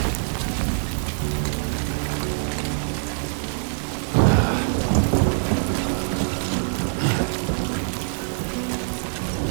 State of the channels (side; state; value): left; silent; digital silence